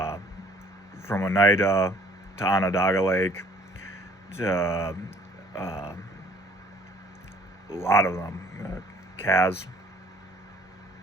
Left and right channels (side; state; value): both; normal; correlation 0.56